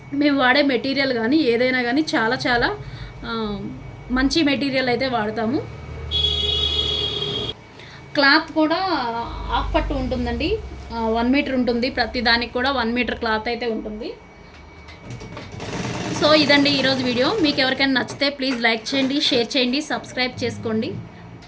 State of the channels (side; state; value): both; identical; correlation 1.00